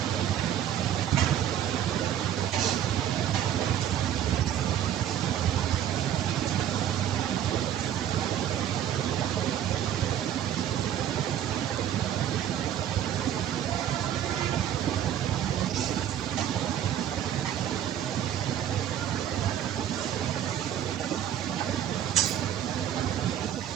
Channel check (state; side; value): quieter; left; 10.4 dB